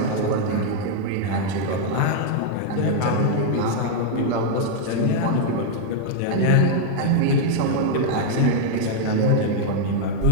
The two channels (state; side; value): different; both; correlation 0.00